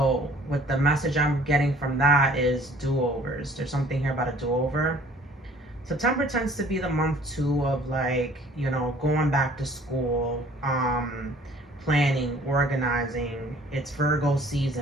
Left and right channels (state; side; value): normal; both; correlation 0.54